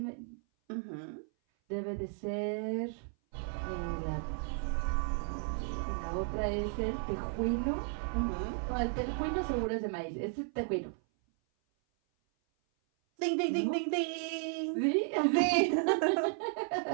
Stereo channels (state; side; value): silent; left; 55 dB below the other